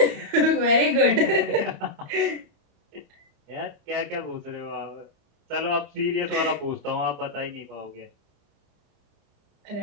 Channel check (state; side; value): late; left; 31 ms